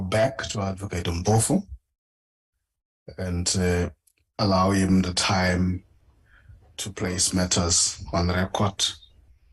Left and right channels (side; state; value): both; identical; correlation 1.00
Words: back to Advocate Mpofu and allow him the time to place matters on record